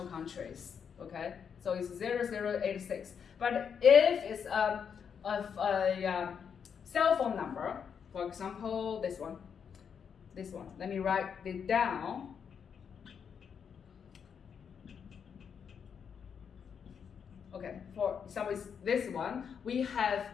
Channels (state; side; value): quieter; right; 7.1 dB